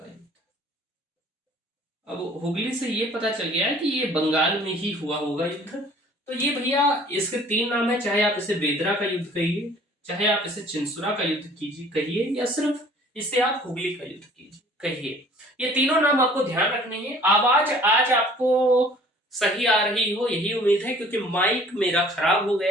युद्ध। अब हुगली से ये पता चल गया है कि ये बंगाल में ही हुआ होगा युद्ध। तो ये भैया इसके तीन नाम है, चाहे आप इसे बेदरा का युद्ध कहिए, चाहे आप इसे चिनसुरा का युद्ध कीजिए कहिए, या सिर्फ इसे आप हुगली का युद्ध कीजिए कहिए। ये तीनों नाम आपको ध्यान रखने हैं। आवाज आज आपको सही आ रही हो यही उम्मीद है, क्योंकि माइक मेरा खराब हो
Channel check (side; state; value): both; normal; correlation 0.52